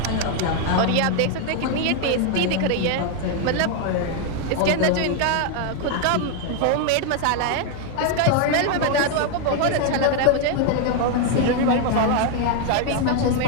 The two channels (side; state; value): both; different; correlation 0.00